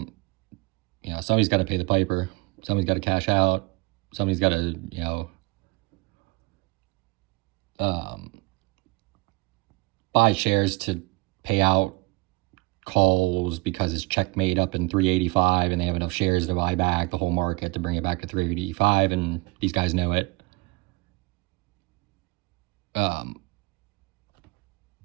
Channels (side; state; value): left; quieter; 24.9 dB